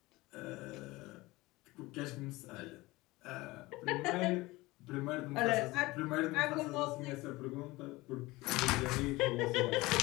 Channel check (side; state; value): right; quieter; 20.7 dB